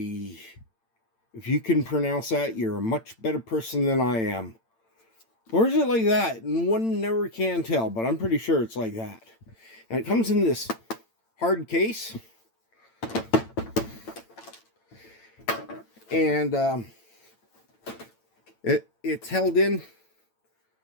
if you can pronounce that, you're a much better person than I am. Or is it like that? And one never can tell, but I'm pretty sure it's like that. And it comes in this hard case. And it's held in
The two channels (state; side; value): late; right; 8.9 ms